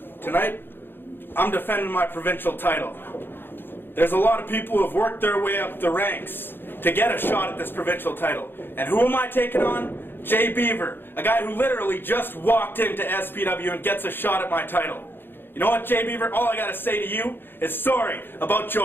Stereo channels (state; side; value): late; right; 0.10 ms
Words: Tonight, I'm defending my provincial title. There's a lot of people who have worked their way up the ranks to get a shot at this provincial title. And who am I taking on? Jay Beaver, a guy who literally just walked into SPW and gets a shot at my title. You know what, Jay Beaver? All I gotta say to you is sorry about